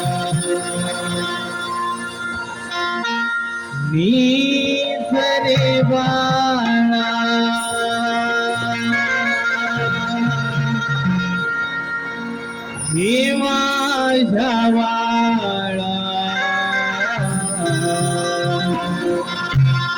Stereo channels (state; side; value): identical; both; correlation 1.00